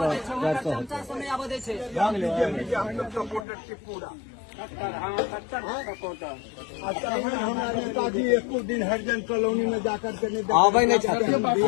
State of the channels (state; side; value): drops out; right; at 3.5 s